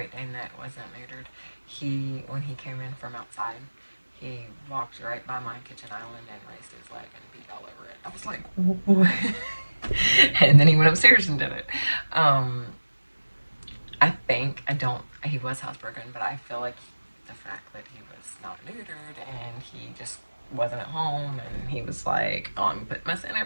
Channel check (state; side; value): inverted; both; correlation -1.00